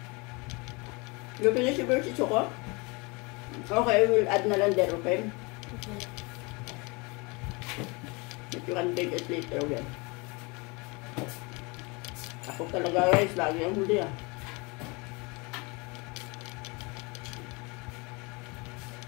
You finish your versi, Choco? Okay, we'll add na lang there, okay? Okay. But you can take it later again. Ako talaga guys, lagi ang huli ah.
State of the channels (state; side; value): quieter; right; 28.0 dB